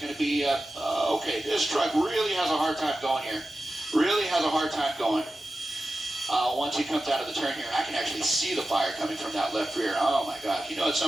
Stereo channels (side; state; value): both; normal; correlation 0.93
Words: to be, okay, this truck really has a hard time going here. Once he comes out of the turn here, I can actually see the fire coming from that left rear. Oh my God, you know, at